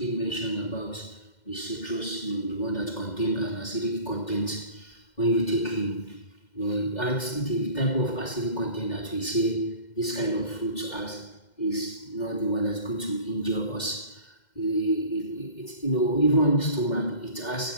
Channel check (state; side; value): late; right; 2.1 ms